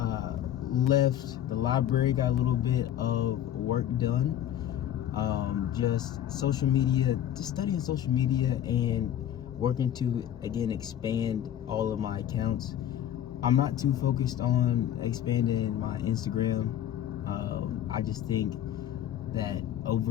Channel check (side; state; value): right; quieter; 11.0 dB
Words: the library, got a little bit of work done. Just social media, just studying social media and working to, again, expand all of my accounts. I'm not too focused on expanding my Instagram. I just think that